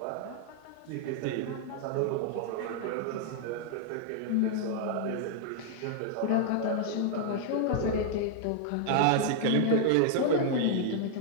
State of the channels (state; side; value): different; both; correlation 0.00